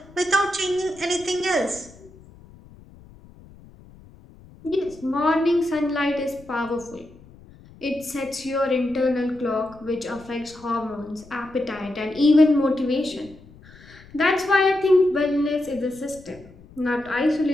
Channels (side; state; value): left; noise; rumble, 23 dB below the sound